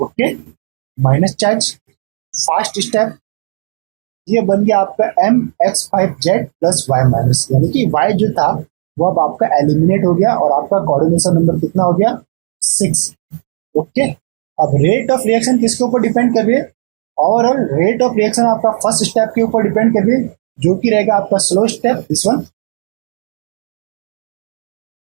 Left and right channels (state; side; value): silent; left; digital silence